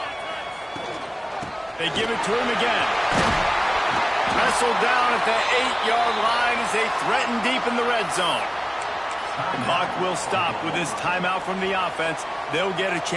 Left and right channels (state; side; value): identical; both; correlation 1.00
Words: They give it to him again. Wrestled down at the 8-yard line as they threaten deep in the red zone. The clock will stop with this timeout from the offense. They'll get a